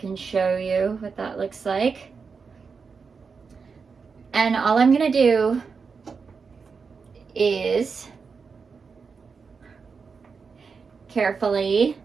show you what that looks like. And all I'm gonna do is carefully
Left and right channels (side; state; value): left; quieter; 5.3 dB